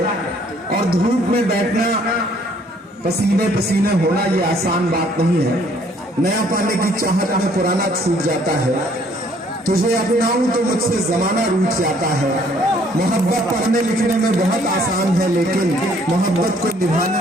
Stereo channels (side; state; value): both; normal; correlation 0.62